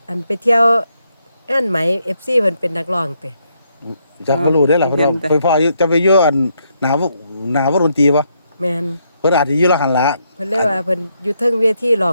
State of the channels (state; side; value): inverted; both; correlation -0.76